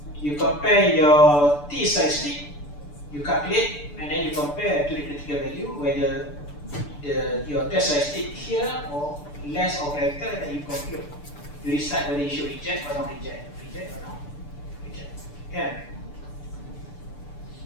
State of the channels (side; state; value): right; late; 6.8 ms